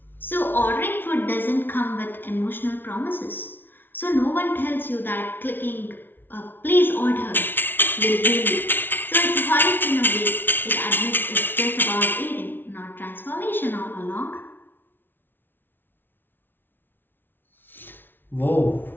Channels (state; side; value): late; right; 0.098 ms